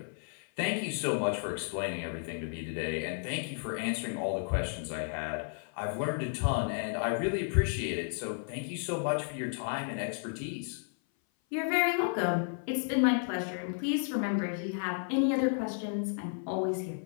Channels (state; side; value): silent; right; 56 dB below the other